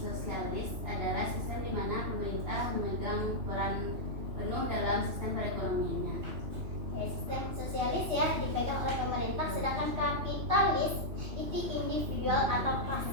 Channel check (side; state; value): left; late; 2.9 ms